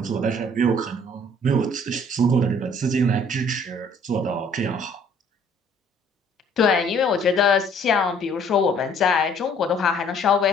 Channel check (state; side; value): normal; both; correlation 0.58